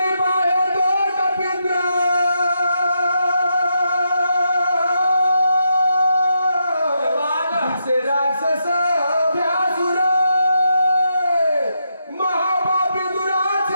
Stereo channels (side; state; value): both; inverted; correlation -0.82